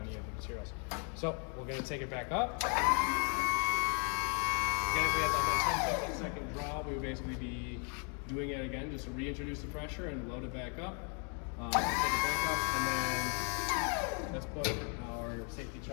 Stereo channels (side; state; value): right; quieter; 39.9 dB